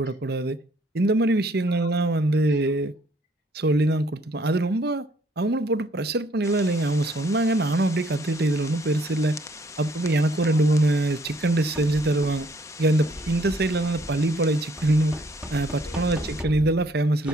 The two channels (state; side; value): normal; both; correlation 0.65